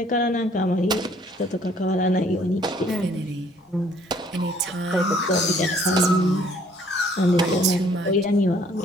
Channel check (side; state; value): both; normal; correlation 0.61